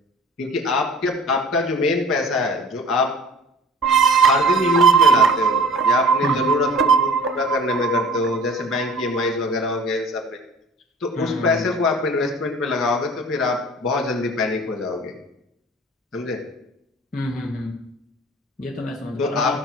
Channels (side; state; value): both; normal; correlation 0.45